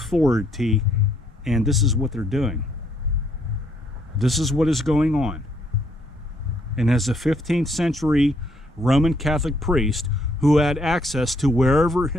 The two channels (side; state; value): both; normal; correlation 0.70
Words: and this is what they're doing. This is what is going on. And as a 15th century Roman Catholic priest who had access to wherever